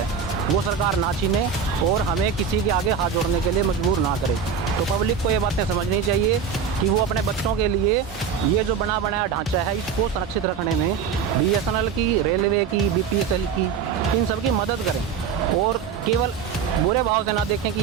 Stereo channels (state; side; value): quieter; left; 6.6 dB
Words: वो सरकार ना छीने और हमें किसी के आगे हाथ जोड़ने के लिए मजबूर ना करे। तो पब्लिक को ये बातें समझनी चाहिए कि वो अपने बच्चों के लिए ये जो बना बनाया ढांचा है इसको संरक्षित रखने में बीएसएनएल की, रेलवे की, बीपीएसएल की, इन सब की मदद करें और केवल बुरे भाव से ना देखें कि